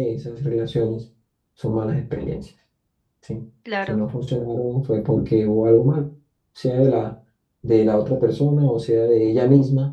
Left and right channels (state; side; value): identical; both; correlation 1.00